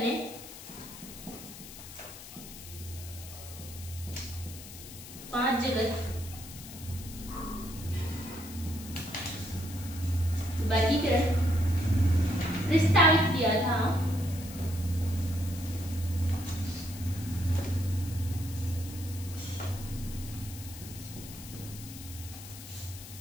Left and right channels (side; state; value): left; noise; hiss, 14 dB below the sound